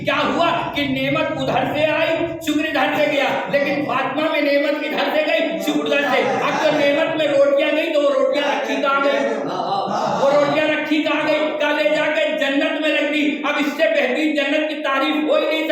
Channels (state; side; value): identical; both; correlation 1.00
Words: کیا ہوا کہ نعمت ادھر سے آئی، شکر ادھر سے گیا. لیکن فاطمہ میں نعمت ادھر سے گئی، شکر ادھر سے. اب جو نعمت میں روٹیاں گئی تو وہ روٹیاں رکھی کہاں گئی، وہ روٹیاں رکھی کہاں گئی، کہاں لے جا کے جنت میں رکھ دی. اب اس سے بہترین جنت کی تعریف ہو ہی نہیں